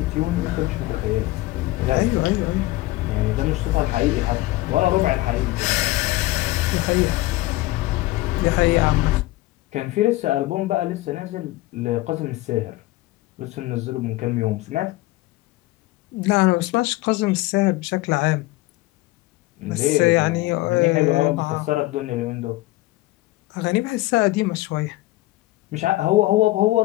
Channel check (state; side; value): quieter; right; 18.6 dB